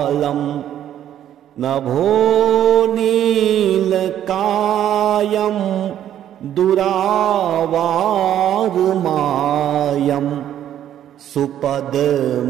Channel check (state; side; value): quieter; left; 11.0 dB